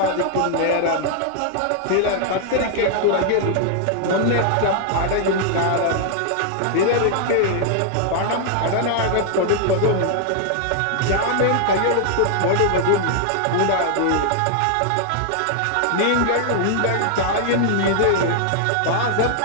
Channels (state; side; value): different; both; correlation -0.01